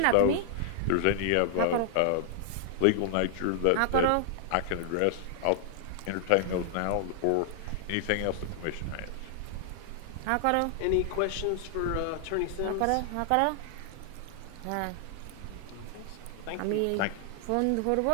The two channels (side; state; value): both; different; correlation 0.00